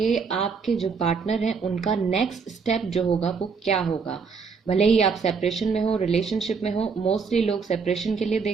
आपके जो पार्टनर हैं उनका नेक्स्ट स्टेप जो होगा वो क्या होगा। भले ही आप सेपरेशन में हो, रिलेशनशिप में हो, मोस्टली लोग सेपरेशन के लिए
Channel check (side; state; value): left; quieter; 5.4 dB